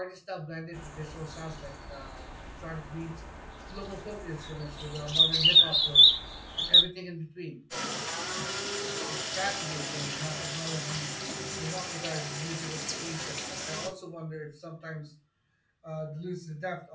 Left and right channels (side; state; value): both; identical; correlation 1.00